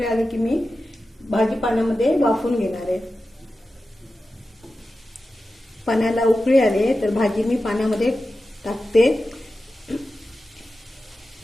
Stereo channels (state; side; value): normal; both; correlation 0.93